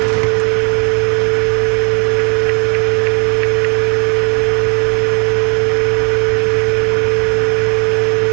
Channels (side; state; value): left; quieter; 34.8 dB